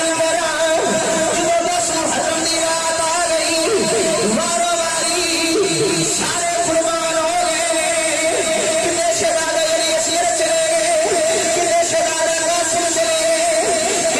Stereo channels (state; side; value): identical; both; correlation 1.00